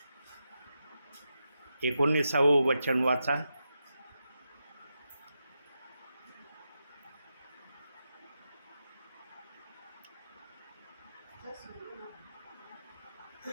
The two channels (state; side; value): inverted; both; correlation -0.87